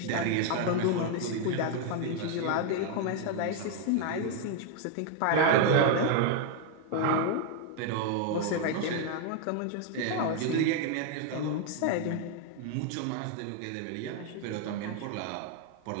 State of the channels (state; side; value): different; both; correlation 0.01